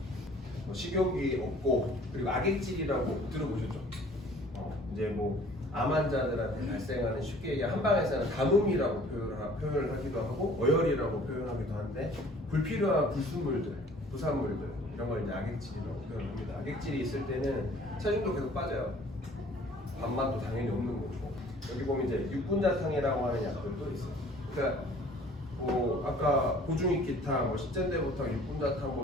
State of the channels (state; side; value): normal; both; correlation 0.52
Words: 식욕이 없고 그리고 악액질이라고 들어보셨죠? 이제 암 환자들한테 발생하는 쉽게 얘기 한방에서는 가뭄이라고 표현을 하기도 하고 어혈이라고 표현하기도 하는데 불필요한 불순물들, 부산물들 이런 걸 이제 악액질이라고 표현합니다. 악액질이 있을 때는 체중도 계속 빠져요. 밥맛도 당연히 없는 거고 여기 보면 이제 육군자탕이라고 하는 약들도 있어요. 그러니까 아까 고중익기탕, 십전대보탕,